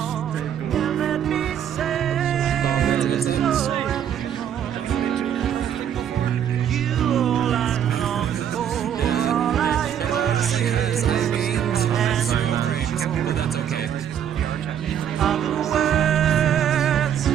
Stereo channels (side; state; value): left; quieter; 9.4 dB